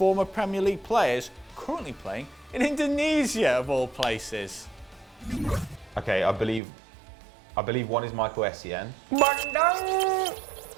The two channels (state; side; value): drops out; left; at 6.6 s